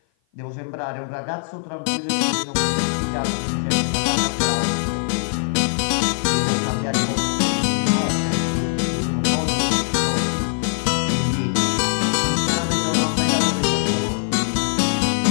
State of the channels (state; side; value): silent; right; 55 dB below the other